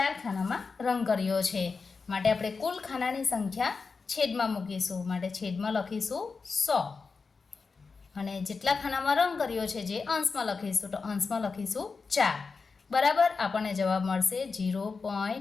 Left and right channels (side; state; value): right; quieter; 4.7 dB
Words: ખાનામાં રંગ કર્યો છે માટે આપણે કુલ ખાનાની સંખ્યા છેદમાં મૂકીશું માટે છેદમાં લખીશું 100 અને જેટલા ખાનામાં રંગ કર્યો છે જે અંશમાં લખીશું તો અંશમાં લખીશું 4 બરાબર આપણને જવાબ મળશે